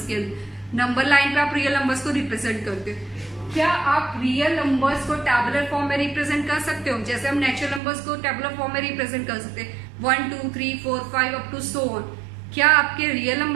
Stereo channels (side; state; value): left; drops out; at 7.8 s